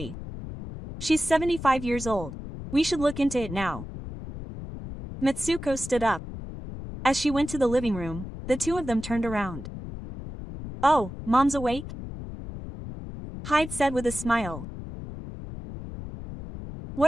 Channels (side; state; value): left; noise; rumble, 10 dB below the sound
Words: She's 75 years old. We should look into it now. Mitsuko stood up. As she went to the living room, the two of them turned around. Oh, Mom's awake? Hyde said with a smile.